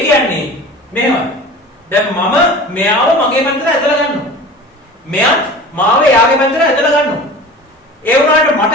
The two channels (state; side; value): normal; both; correlation 0.38